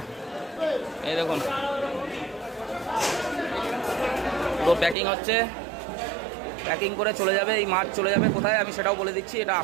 এই দেখুন পুরো প্যাকিং হচ্ছে, প্যাকিং করে চলে যাবে। এই মাছ চলে যাবে কোথায় আমি সেটাও বলে দিচ্ছি। এটা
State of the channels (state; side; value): drops out; left; at 5.0 s